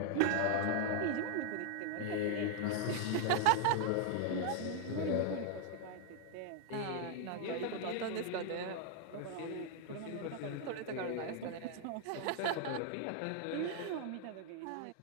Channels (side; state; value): both; different; correlation 0.00